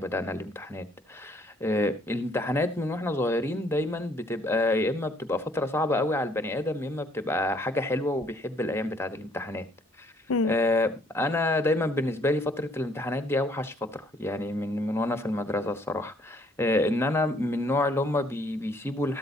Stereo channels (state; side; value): normal; both; correlation 0.64